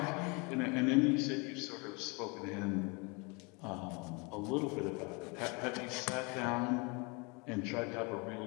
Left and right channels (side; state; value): right; quieter; 30.1 dB